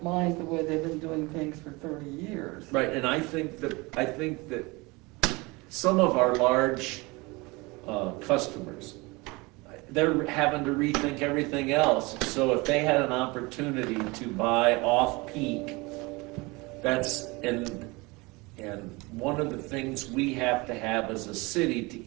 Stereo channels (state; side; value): quieter; left; 24.8 dB